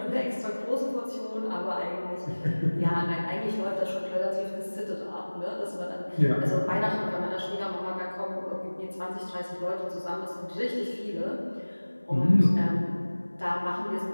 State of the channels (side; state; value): both; inverted; correlation -1.00